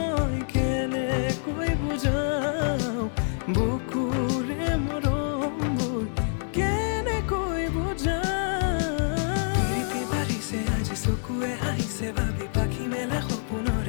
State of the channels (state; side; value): silent; right; digital silence